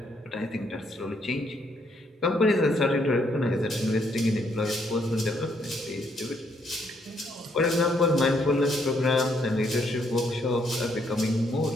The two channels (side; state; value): both; normal; correlation 0.72